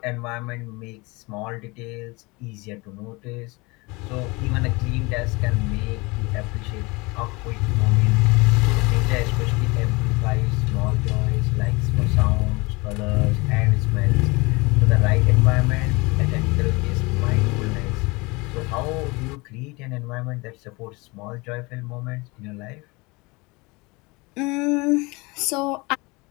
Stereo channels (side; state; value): right; quieter; 25.5 dB